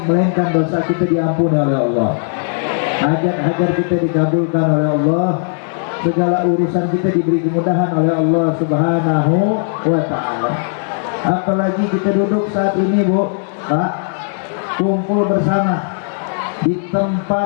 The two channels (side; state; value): right; silent; digital silence